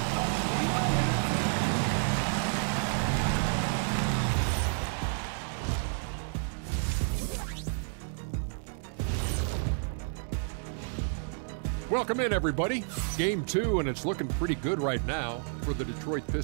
Welcome in, everybody. Game 2, and it's looking pretty good right now for the Detroit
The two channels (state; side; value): silent; left; 57 dB below the other